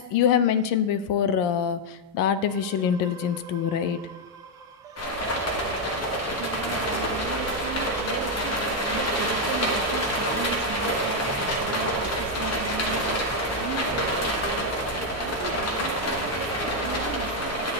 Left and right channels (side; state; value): both; normal; correlation 0.01